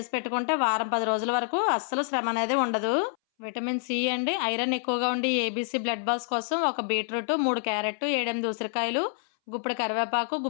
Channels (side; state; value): right; silent; 60 dB below the other